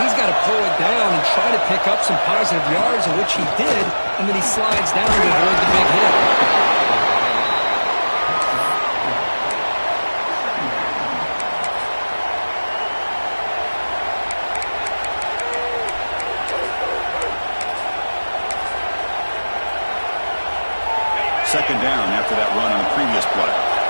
got to pull it down and try to pick up some positive yards, in which he did, and then he slides down to avoid the big hit. Second down after that run on the previous play.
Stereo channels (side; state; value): both; inverted; correlation -1.00